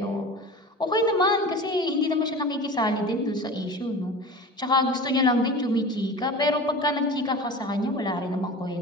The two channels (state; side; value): normal; both; correlation 0.35